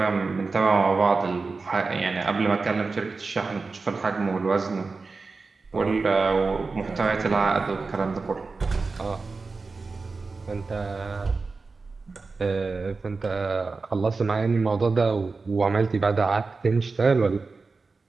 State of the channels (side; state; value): left; quieter; 4.1 dB